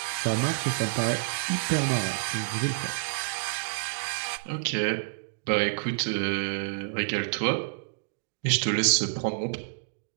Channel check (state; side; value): silent; left; digital silence